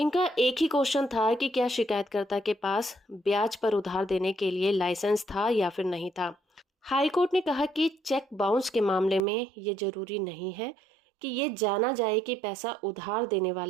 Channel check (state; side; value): drops out; left; at 9.2 s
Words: एक ही क्वेश्चन था कि क्या शिकायतकर्ता के पास ब्याज पर उधार देने के लिए लाइसेंस था या फिर नहीं था। हाई कोर्ट ने कहा कि चेक बाउंस के मामले में ये जरूरी नहीं है कि ये जाना जाए कि पैसा उधार देने